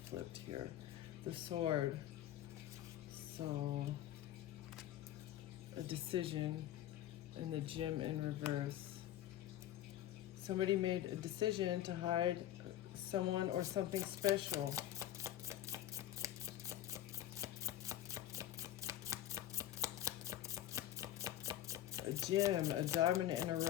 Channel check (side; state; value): right; quieter; 12.7 dB